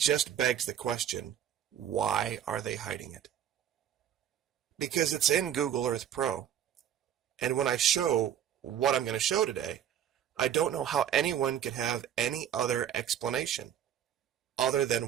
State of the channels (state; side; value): quieter; left; 9.9 dB